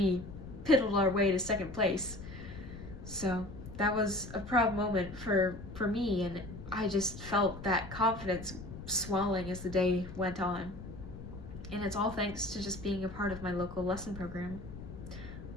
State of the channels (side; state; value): left; noise; rumble, 12 dB below the sound